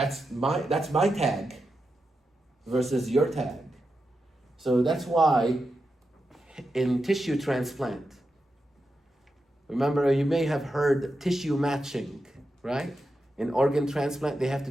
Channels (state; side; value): normal; both; correlation 0.88